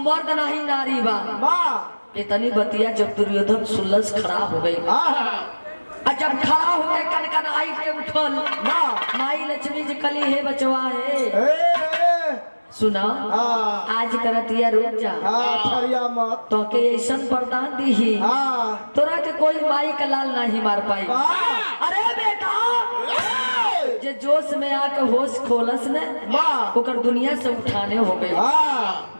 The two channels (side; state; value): both; inverted; correlation -1.00